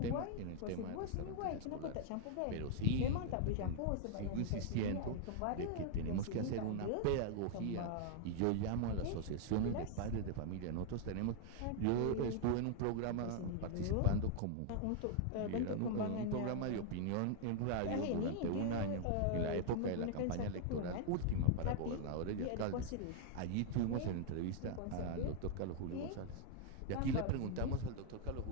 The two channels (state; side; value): different; both; correlation 0.00